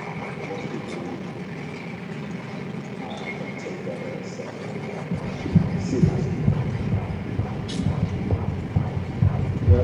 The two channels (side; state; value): both; identical; correlation 1.00